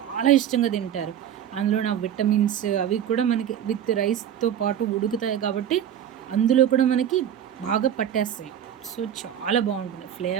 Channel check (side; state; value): left; quieter; 10.0 dB